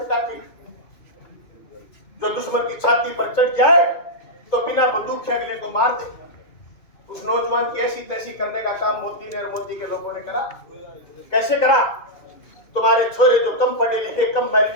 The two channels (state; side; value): late; right; 2.5 ms